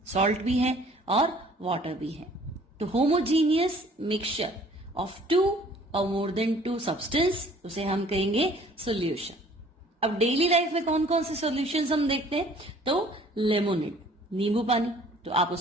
सॉल्ट भी है और वाटर भी है। तो होमोजीनियस मिक्सचर ऑफ टू और मोर देन टू सब्सटेंस, उसे हम कहेंगे सॉल्यूशन। अब डेली लाइफ में कौन कौन से सॉल्यूशंस हम देखते हैं? तो लेमोनेड, नींबू पानी, तो आप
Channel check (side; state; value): both; normal; correlation 0.54